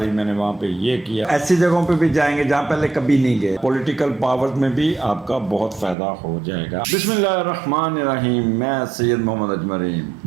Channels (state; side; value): drops out; left; at 6.0 s